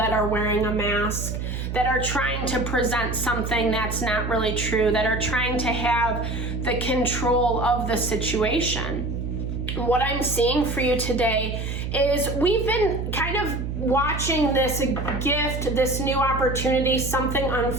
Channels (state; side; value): noise; right; hum, 4 dB below the sound